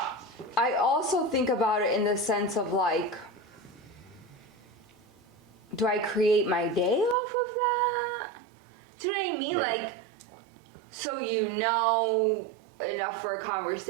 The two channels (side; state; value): left; drops out; at 7.2 s